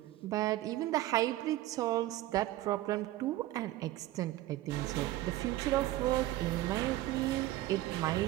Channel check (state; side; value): quieter; left; 15.7 dB